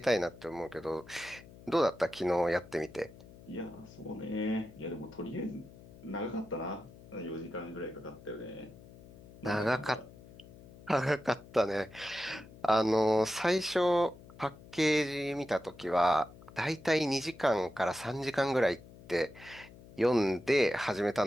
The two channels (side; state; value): left; noise; hum, 20 dB below the sound